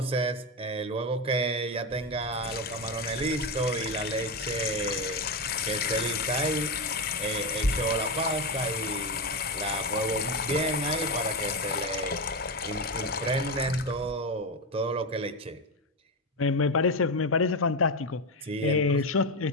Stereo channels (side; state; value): both; normal; correlation 0.13